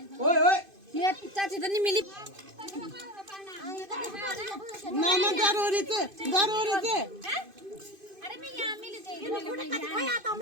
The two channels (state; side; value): late; left; 2.5 ms